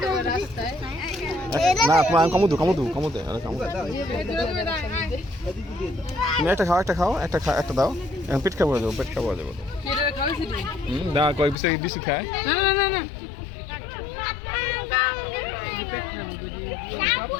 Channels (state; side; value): drops out; right; at 11.6 s